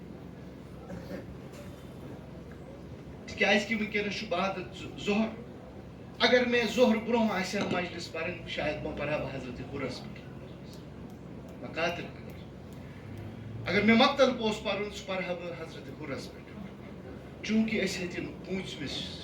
تِکیٛازِ کہِ وٕنکیٚنس چھُ بعد ظہر اگر مےٚ ظہر برونٛہہ آسہِ ہا مجلس پرٕنۍ شاید پرہا بہٕ حضرت حُرس پٮ۪ٹھ مقاتل اگر مےٚ مقتل اوس پرُن سُہ پرہا بہٕ حضرت حُرس پٮ۪ٹھ چوٗنٛکہِ أسۍ ہیٚتِن 25مِس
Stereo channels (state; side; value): identical; both; correlation 1.00